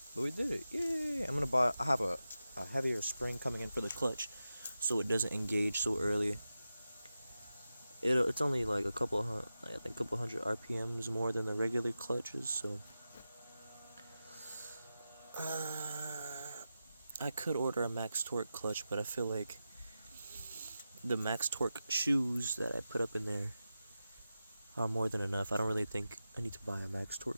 But we did it. Yay! I have a heavier spring coming in for the clutch, so it doesn't engage so early. It's only like a couple hundred RPMs more than the regular clutches, so I could order a max torque clutch, but I feel like the max torque shoes that I put up in there are more than enough. I don't really think I need to buy a max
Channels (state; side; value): inverted; both; correlation -0.92